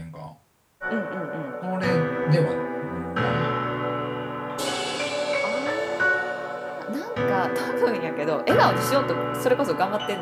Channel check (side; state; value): both; identical; correlation 1.00